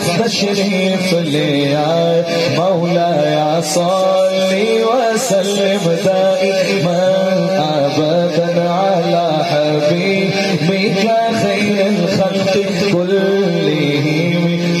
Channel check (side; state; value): both; identical; correlation 1.00